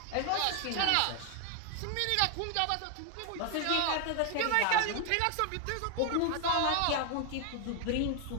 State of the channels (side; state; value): both; different; correlation 0.00